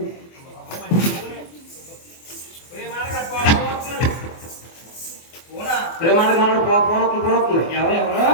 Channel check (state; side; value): late; right; 24 ms